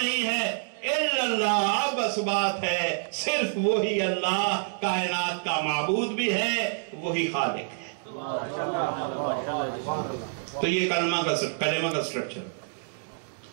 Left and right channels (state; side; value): silent; left; digital silence